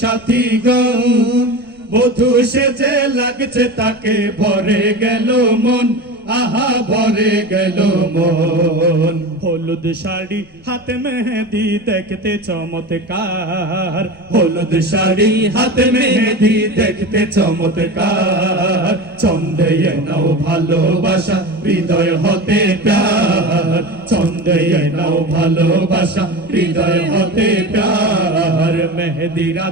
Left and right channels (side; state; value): right; noise; rumble, 30 dB below the sound